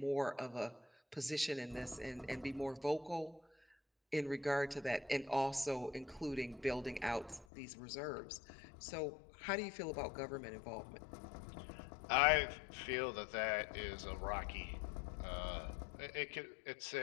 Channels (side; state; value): right; drops out; at 7.5 s